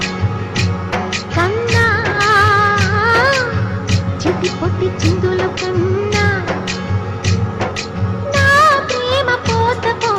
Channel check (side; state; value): both; identical; correlation 1.00